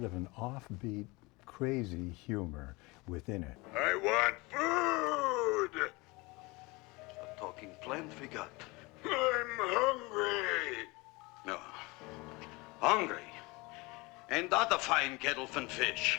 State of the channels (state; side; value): quieter; right; 24.7 dB